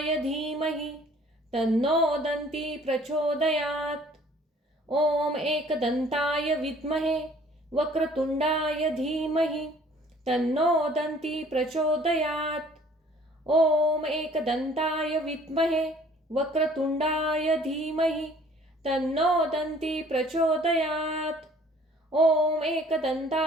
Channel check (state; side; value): normal; both; correlation 0.55